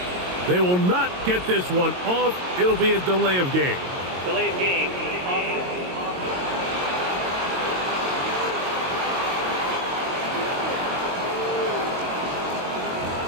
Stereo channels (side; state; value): left; late; 22 ms